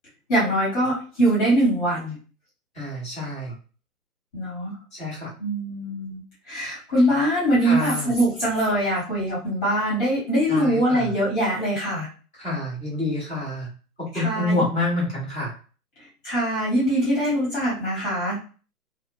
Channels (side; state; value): both; normal; correlation 0.46